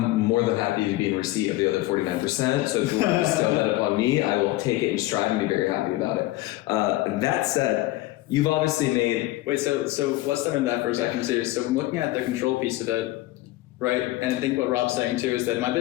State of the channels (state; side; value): quieter; right; 17.8 dB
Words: more than happy to be in receipt of the other 49%. So if you want to bestow that upon me, I will take it in stride and be very happy about it. That said, you've obviously made... Wait, so let's start in that for a second too. So I'm looking at the control piece of it, right? And I think what Rob's saying too is that in my